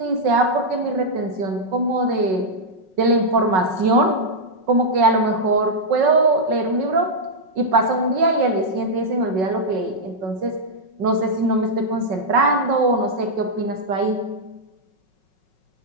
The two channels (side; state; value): left; late; 5.4 ms